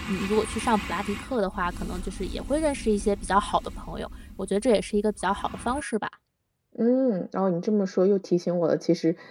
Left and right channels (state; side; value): identical; both; correlation 1.00